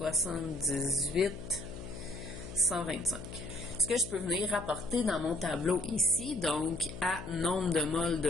125. Ce que je peux venir rapporter dans mon tableau ici, donc à nombre de moles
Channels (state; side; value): noise; left; hum, 11 dB below the sound